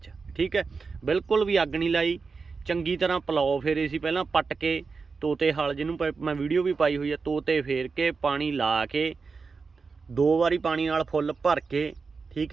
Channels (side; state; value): left; quieter; 4.8 dB